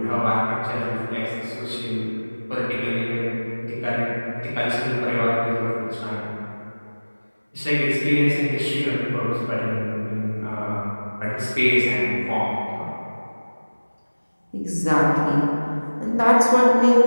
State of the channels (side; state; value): both; inverted; correlation -1.00